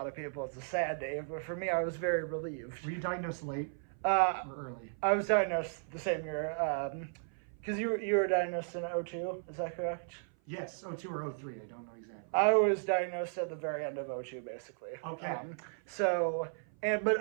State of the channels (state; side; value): silent; left; 54 dB below the other